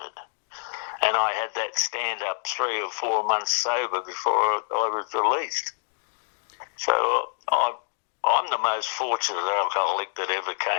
And I had that stand-up 3 or 4 months sober before I was released. So I'm the most fortunate alcoholic that ever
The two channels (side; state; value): right; silent; digital silence